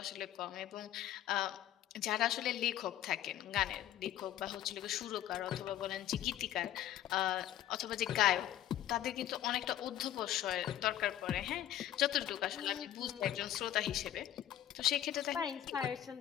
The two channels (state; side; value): quieter; right; 12.1 dB